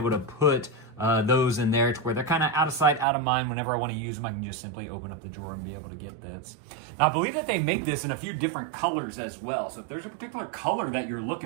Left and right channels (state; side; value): drops out; left; at 3.1 s